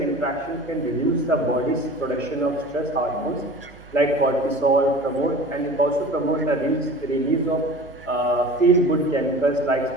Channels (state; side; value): noise; right; hum, 23 dB below the sound